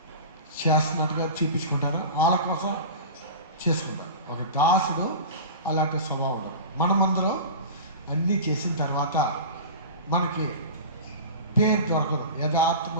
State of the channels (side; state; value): both; inverted; correlation -0.31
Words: చేస్తున్నట్టుగా చూపించుకుంటారు, వాళ్ళ కోసం చేసుకుంటారు. ఒక దాసుడు అలాంటి స్వభావం ఉండదు. మనమందరం అన్నీ చేసిన తర్వాత మనకి పేరు దొరకదు.